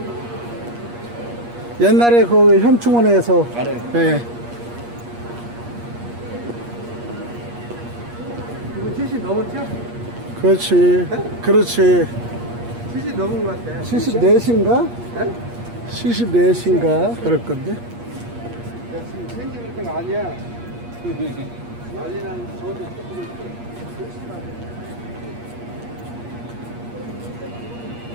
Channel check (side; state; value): left; late; 8.4 ms